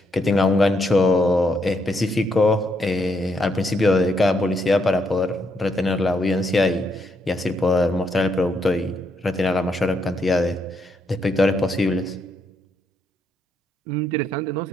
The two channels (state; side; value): normal; both; correlation 0.76